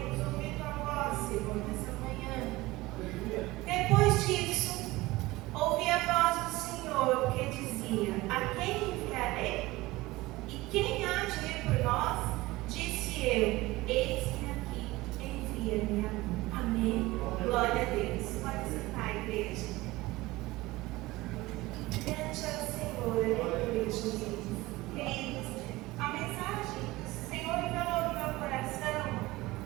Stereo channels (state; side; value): quieter; left; 19.7 dB